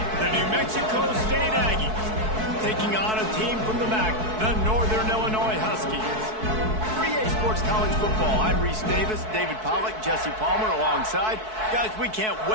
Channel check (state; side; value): late; left; 4.6 ms